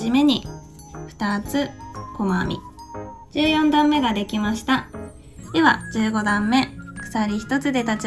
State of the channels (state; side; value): identical; both; correlation 1.00